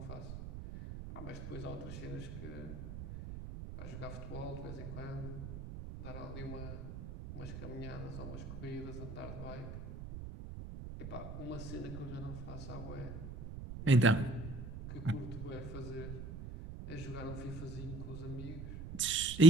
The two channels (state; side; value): noise; right; rumble, 6 dB below the sound